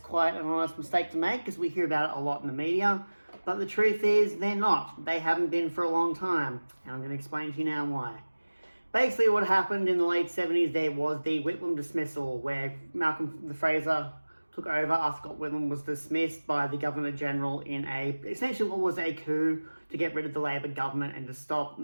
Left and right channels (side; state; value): both; inverted; correlation -1.00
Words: an honest mistake to make because we hear about it a lot in the media, but the truth is they're not. They haven't been for a long time, and I'm going to explain to you now why. Basically, what happened in the late 70s, there was the Whitlam dismissal, where Malcolm Fraser took over after Scott Whitlam was dismissed by the Governor-General in essentially what was a coup to get rid of the Labor government and to stop